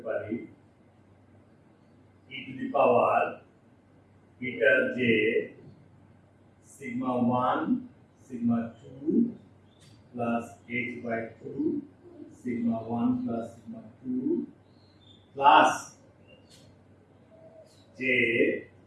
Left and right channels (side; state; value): both; identical; correlation 1.00